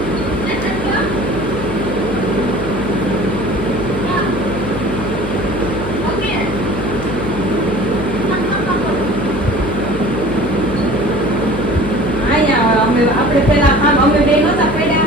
આપણે પેલા આમ અમે બે નહોતા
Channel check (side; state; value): left; noise; hum, 8 dB below the sound